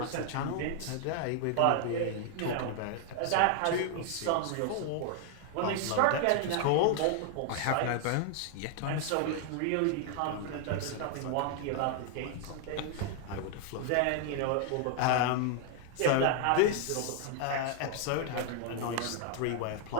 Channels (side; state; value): both; different; correlation 0.00